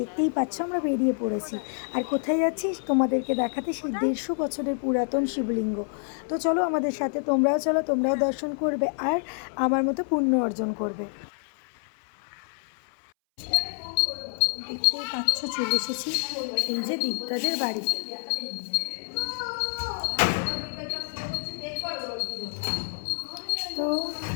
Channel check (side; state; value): right; silent; 60 dB below the other